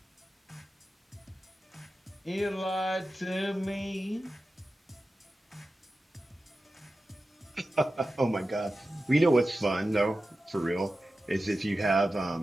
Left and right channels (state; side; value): normal; both; correlation 0.93